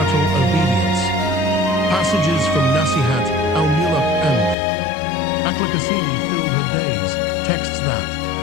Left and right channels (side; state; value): right; drops out; at 4.5 s